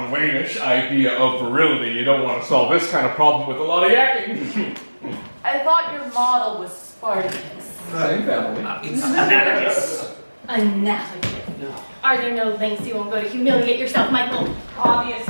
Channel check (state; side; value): inverted; both; correlation -1.00